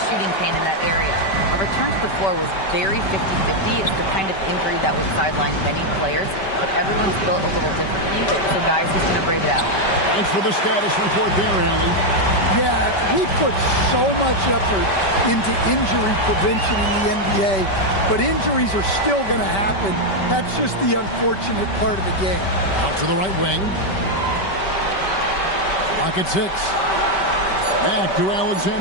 shooting pain in that area. A return to the floor was very 50-50. It's the kind of injury that would sideline many players, but everyone's built a little differently. So, guys, he's going to brave it out. Thanks for the status report there, Allie. Yeah, we put so much effort into injury prevention in the NBA, but injuries are still going to happen. That's just the unfortunate part of the game. Out to the right wing. Clock at 6. Back to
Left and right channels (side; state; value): right; late; 5.2 ms